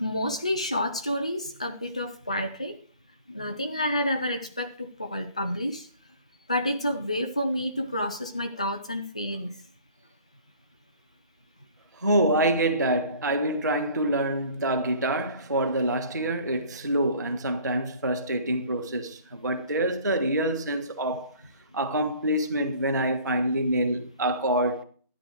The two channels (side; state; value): both; inverted; correlation -0.51